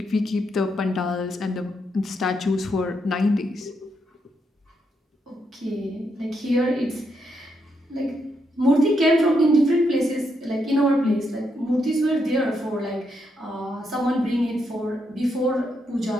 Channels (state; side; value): normal; both; correlation 0.80